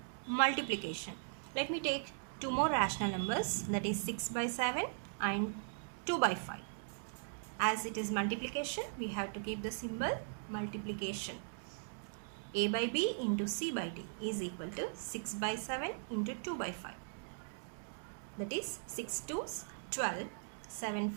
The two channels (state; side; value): silent; left; digital silence